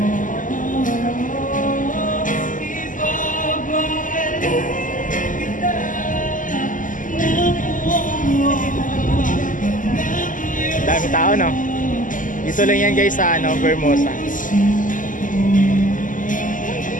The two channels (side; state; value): right; late; 0.38 ms